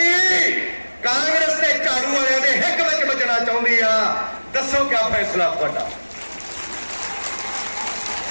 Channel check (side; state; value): both; inverted; correlation -1.00